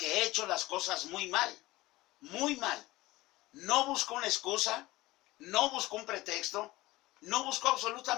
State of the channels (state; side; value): quieter; right; 19.1 dB